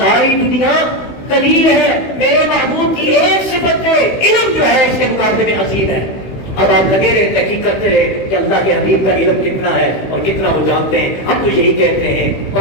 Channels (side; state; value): right; late; 16 ms